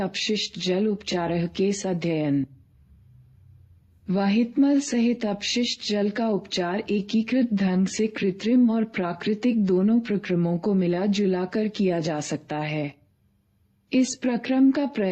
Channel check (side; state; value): both; identical; correlation 1.00